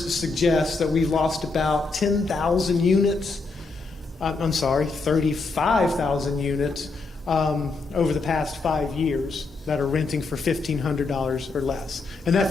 suggest that we've lost about 10,000 units. 35,000 units over the past 5 years that are renting for $1,500 or less. And that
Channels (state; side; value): quieter; right; 3.9 dB